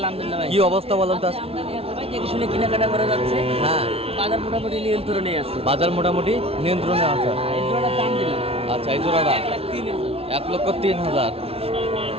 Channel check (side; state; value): left; late; 0.28 ms